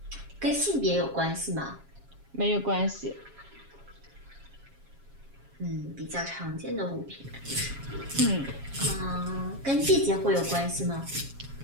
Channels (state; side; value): late; left; 7.3 ms